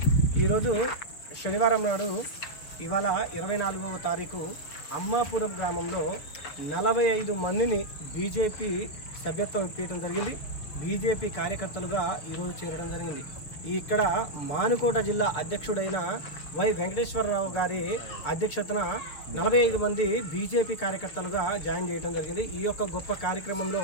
ఈరోజు శనివారం నాడు ఇవాళ 24వ తారీఖు అమ్మాపురం గ్రామంలో 45 మందిని బీజేపీ సభ్యత్వం ఇప్పించడం జరిగింది. బీజేపీ కార్యకర్తలుగా ఈరోజు చేరడం జరిగింది. ఇక్కడ మానుకోట జిల్లా అధ్యక్షుడైన వై వెంకటేశ్వరరావు గారి అధ్యక్షతన 45 మంది బీజేపీ కార్యకర్తలుగా జాయిన్ చేయడం జరిగింది. ఈ యొక్క గొప్ప కార్యక్రమంలో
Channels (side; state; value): right; late; 7.0 ms